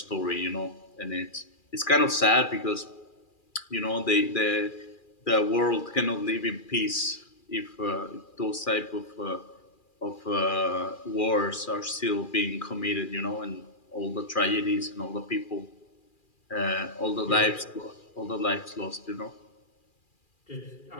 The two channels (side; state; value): right; late; 2.4 ms